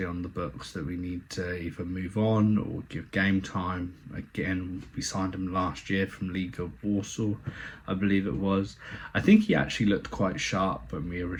on the books that we need to either move on or give game time. Again, we signed him last year from League of Warsaw, I believe it was. I think he actually looked quite sharp when we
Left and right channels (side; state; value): both; identical; correlation 1.00